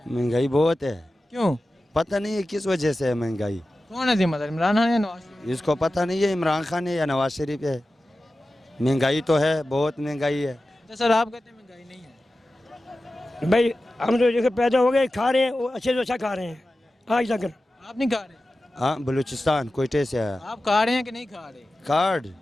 महंगाई बहुत है, क्यों? पता नहीं है किस वजह से है महंगाई, कौन है जिम्मेदार, इमरान खान या नवाज शरीफ? इसको पता नहीं है इमरान खान है या नवाज शरीफ है। महंगाई तो है, बहुत महंगाई है। अच्छा सर, आप कहते हैं महंगाई नहीं है? भाई हम तो देखो पैदा हो गए, खा रहे हैं, वो अच्छे से अच्छा खा रहे हैं आज तक। आप नहीं खा रहे? हाँ, बलूचिस्तान कोयटे से है। आप खा रहे हैं कि नहीं खा रहे? कार्ड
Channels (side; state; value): both; normal; correlation 0.94